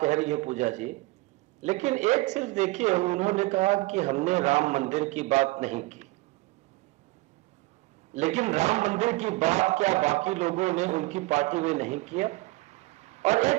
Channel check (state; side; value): quieter; left; 21.2 dB